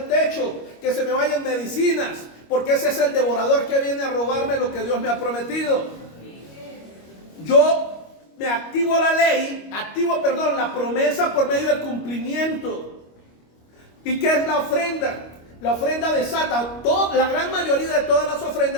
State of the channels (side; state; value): right; late; 25 ms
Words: techo, que se me vayan medicinas, porque ese es el devorador que viene a robarme lo que Dios me ha prometido. Yo me activo la ley, la promesa por medio del cumplimiento. ¿Y qué es la ofrenda? La ofrenda desata, la gran mayoría de todas las